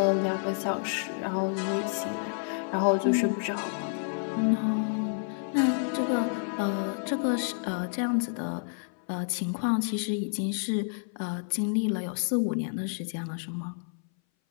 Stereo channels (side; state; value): right; silent; 58 dB below the other